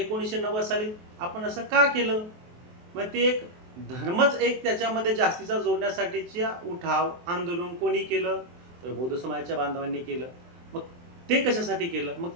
साली आपण असं का केलं? मग ते एक धर्मच एक त्याच्यामध्ये जास्तीचा जोडण्यासाठीच्या उठाव, आंदोलन कोणी केलं? तर बौद्ध समाजाच्या बांधवांनी केलं. मग ते कशासाठी केलं? मग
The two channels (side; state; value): left; late; 23 ms